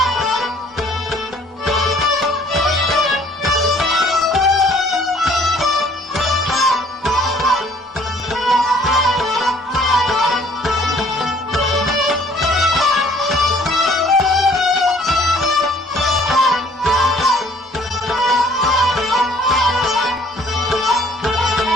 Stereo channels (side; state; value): both; normal; correlation 0.58